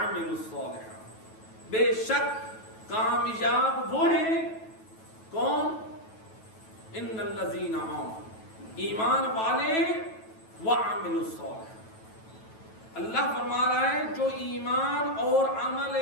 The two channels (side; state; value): right; late; 9.2 ms